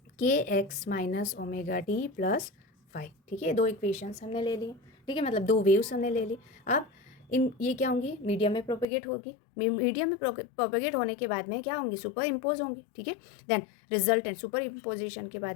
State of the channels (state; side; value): drops out; right; at 8.8 s